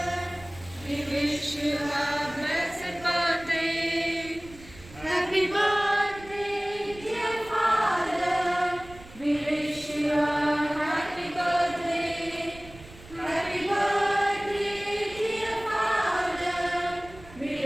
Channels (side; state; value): right; noise; rumble, 19 dB below the sound